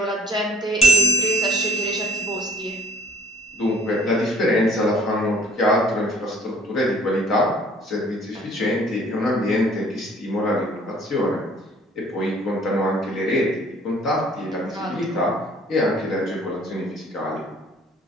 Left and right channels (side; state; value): both; normal; correlation 0.55